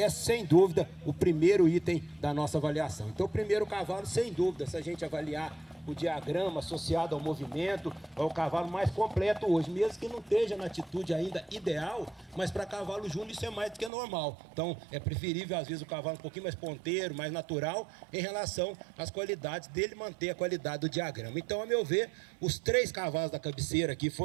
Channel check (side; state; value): left; drops out; at 13.9 s